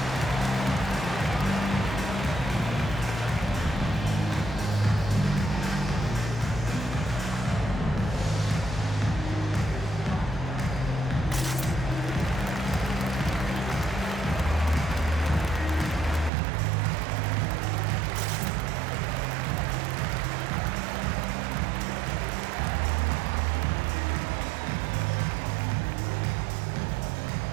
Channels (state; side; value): drops out; left; at 16.3 s